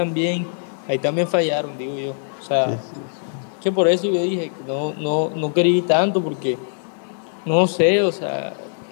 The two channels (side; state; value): right; silent; digital silence